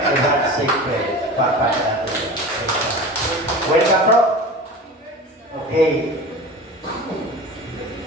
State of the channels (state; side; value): normal; both; correlation 0.34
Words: Secret, Papa nato. Welcome, bro. Okay.